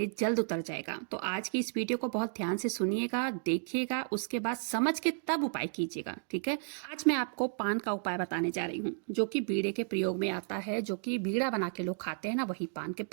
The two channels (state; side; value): silent; left; digital silence